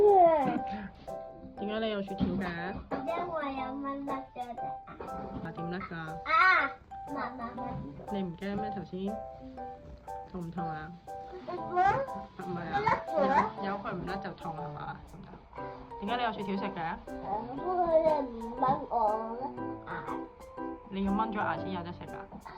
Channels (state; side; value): identical; both; correlation 1.00